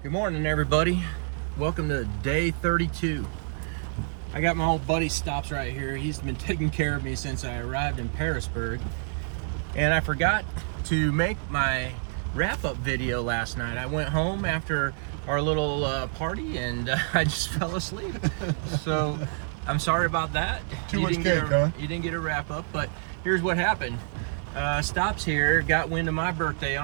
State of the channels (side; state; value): left; silent; 58 dB below the other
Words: Good morning, everybody. Welcome to day 32. I got my old buddy Stops right here. He's been taking care of me since I arrived in Parisburg. And I forgot to make my wrap-up video last night. I went home after our little party and I just fell asleep. So I'm sorry about that. You didn't get a wrap-up, but here's what happened. Stops here got wind of my birthday